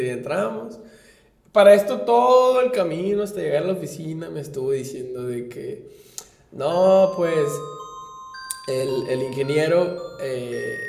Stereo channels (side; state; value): both; identical; correlation 1.00